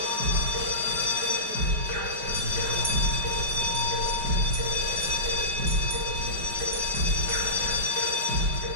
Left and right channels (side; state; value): left; late; 5.0 ms